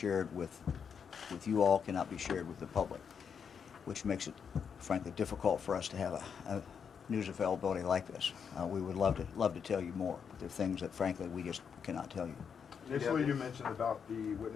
with you all, cannot be shared with the public, which makes it, frankly, difficult for us to have a news availability like this. We would love to tell you more, but there are things that, frankly, we just cannot tell you. Initially, you mentioned about the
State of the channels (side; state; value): right; quieter; 6.8 dB